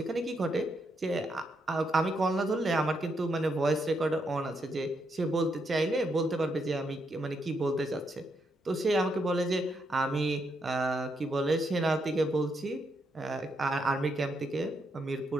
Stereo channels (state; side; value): normal; both; correlation 0.79